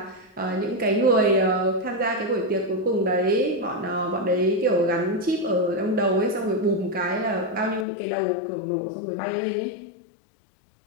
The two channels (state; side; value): drops out; right; at 7.9 s